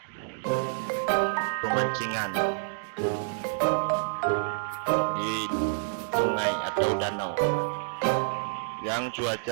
pemancingan di sungai atau danau yang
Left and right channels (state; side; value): silent; left; digital silence